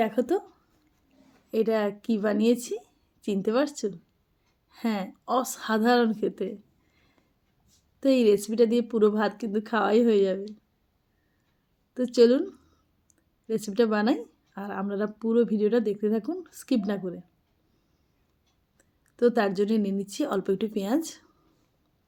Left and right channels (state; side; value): identical; both; correlation 1.00